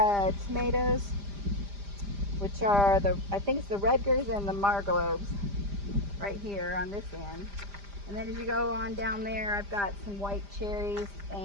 tomatoes, which are I think it's the Rutgers and the Marglobes right here on this end. And then as you go on down there, I've got some white cherries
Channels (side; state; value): left; late; 5.0 ms